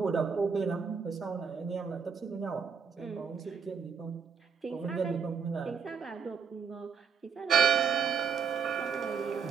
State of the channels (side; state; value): left; quieter; 6.1 dB